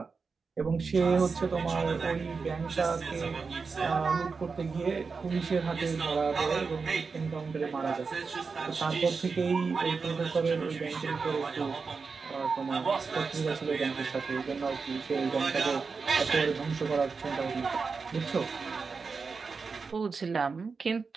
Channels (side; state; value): left; quieter; 4.9 dB